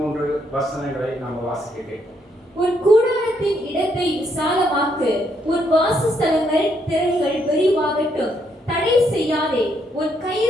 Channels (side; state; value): both; normal; correlation 0.74